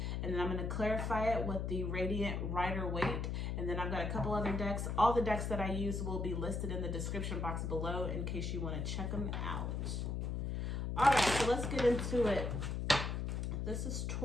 and then I'm going to clarify it with the Radiant Rider-Waite. And then I've got a couple other decks. All the decks that I use will be listed in the description box below in case you want to check them out. All right, so let's get into it. This is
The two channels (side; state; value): left; noise; hum, 2 dB below the sound